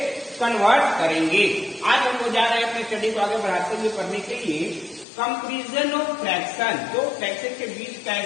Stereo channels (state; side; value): drops out; right; at 5.1 s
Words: कन्वर्ट करेंगे. आज हम लोग जा रहे हैं अपने स्टडी को आगे बढ़ाते हुए पढ़ने के लिए कंपैरिजन ऑफ फ्रैक्शन. तो फ्रैक्शन के बीच